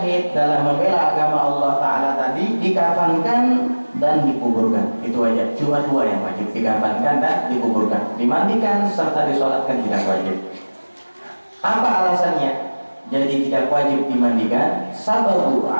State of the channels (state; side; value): inverted; both; correlation -1.00